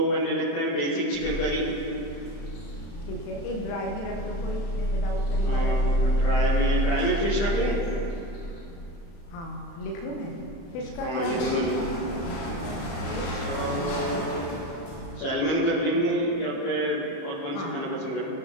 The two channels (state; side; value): late; right; 35 ms